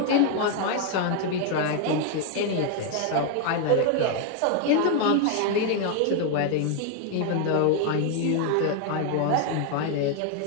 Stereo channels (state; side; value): different; both; correlation 0.00